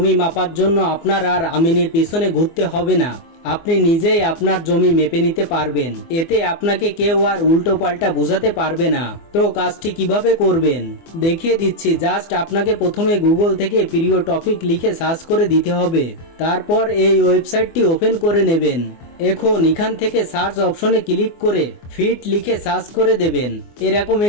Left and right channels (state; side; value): late; right; 24 ms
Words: মাপার জন্য আপনার আর আমিনের পিছনে ঘুরতে হবে না, আপনি নিজেই আপনার জমি মেপে নিতে পারবেন। এতে আপনাকে কেউ আর উল্টো পাল্টা বোঝাতে পারবে না। তো কাজটি কিভাবে করবেন দেখিয়ে দিচ্ছি। জাস্ট আপনাকে প্রথমে গুগল থেকে প্রিয় টপিক লিখে সার্চ করে দিতে হবে। তারপর এই ওয়েবসাইটটি ওপেন করে নেবেন। এখন এখান থেকে সার্চ অপশনে ক্লিক করে ফিট লিখে সার্চ করে দেবেন। এরকম